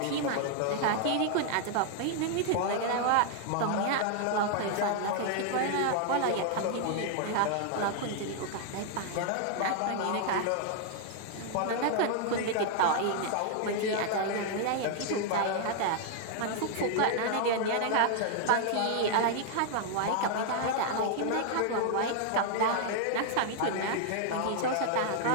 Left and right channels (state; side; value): different; both; correlation 0.00